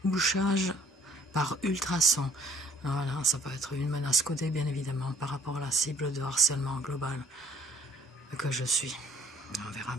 bouchages par ultrasons. Voilà, ça peut être une menace codée, bien évidemment, par rapport à la cible de harcèlement global que je suis. On verra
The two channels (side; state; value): both; normal; correlation 0.58